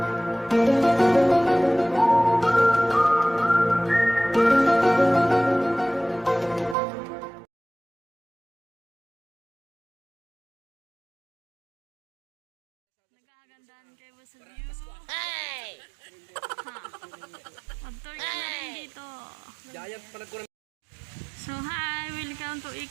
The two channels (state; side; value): drops out; left; at 6.8 s